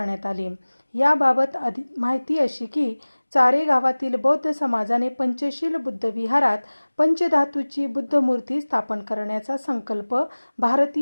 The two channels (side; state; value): both; inverted; correlation -1.00